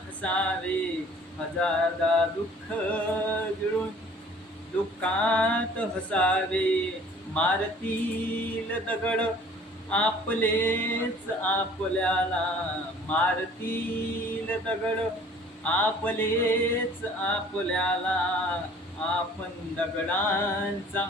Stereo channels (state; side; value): normal; both; correlation 0.52